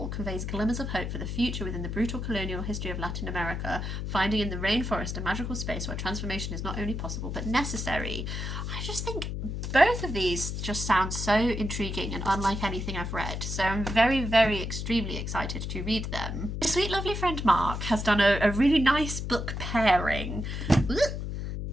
conveys glimmers of hope for the future within the brutal colonial history of Latin America, finding in the rainforest a magical space where transformation is not only possible but necessary. I just think both of these just sound so intriguing and unlike anything I've read, so I'm very, very extremely excited to read them. My sweet lovely friend Marc has done a really nice book pairing.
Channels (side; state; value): left; noise; hum, 4 dB below the sound